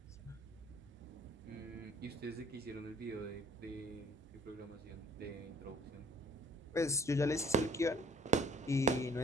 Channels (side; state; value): both; normal; correlation 0.57